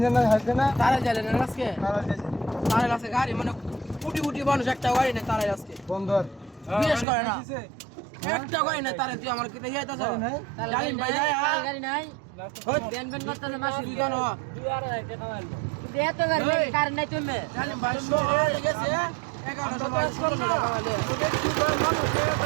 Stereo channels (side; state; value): left; drops out; at 7.1 s